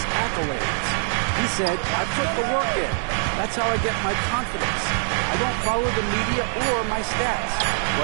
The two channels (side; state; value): left; silent; 60 dB below the other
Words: accolades. He said, I put the work in. That's how I get my confidence. I don't follow the media or my stats.